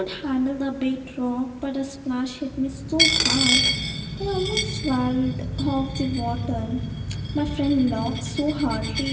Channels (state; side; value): identical; both; correlation 1.00